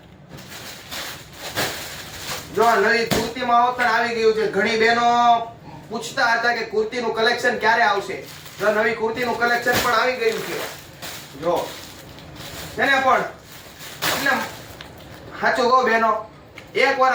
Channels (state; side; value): identical; both; correlation 1.00